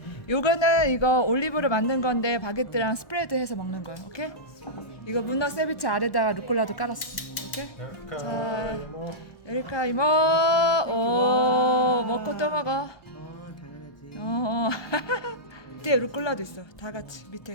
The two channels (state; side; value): late; right; 1.3 ms